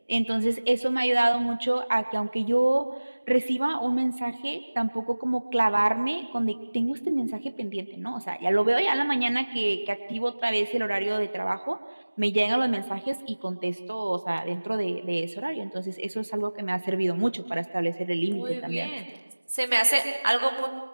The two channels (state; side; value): inverted; both; correlation -1.00